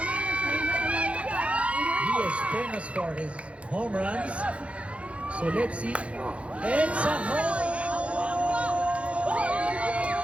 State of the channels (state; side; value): late; left; 0.062 ms